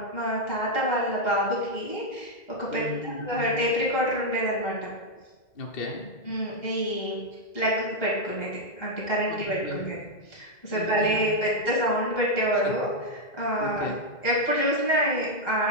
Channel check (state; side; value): late; right; 2.0 ms